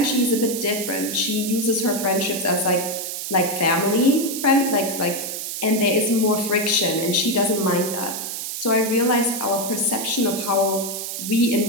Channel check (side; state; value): right; noise; hiss, 5 dB below the sound